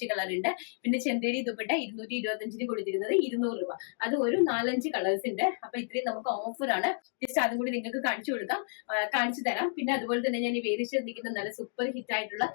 കളർ ഉണ്ട്. പിന്നെ ചെന്തേരി ദുപ്പട്ട 225 കൊടുത്തിരുന്നത് 200 രൂപ, അത് ഒരു 4-5 കളേഴ്സ് ഉണ്ട്. അപ്പൊ ഇത്രയും നമുക്ക് ഓഫറാണ്. ജസ്റ്റ് അതും കൂടി നിങ്ങൾക്ക് കാണിച്ചു തരാം. പിന്നെ അതുപോലെ തന്നെ ഞാൻ ഈ വേദിച്ചിരിക്കുന്ന നല്ല സൂപ്പർ ഹിറ്റ് ആയിട്ടുള്ള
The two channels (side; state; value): right; silent; digital silence